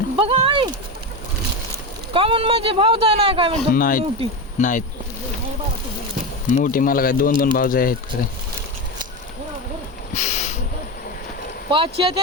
बघा आई कमून म्हणजे भाऊ जाय नाही काय म्हणतो नाहीत नाहीत मोठी मला काय दोन दोन भावज आहेत खरे 5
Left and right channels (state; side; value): normal; both; correlation 0.18